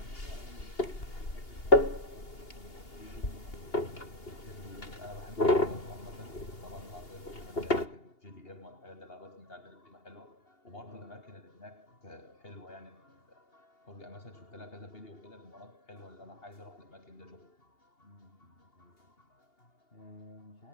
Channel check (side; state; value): right; late; 2.8 ms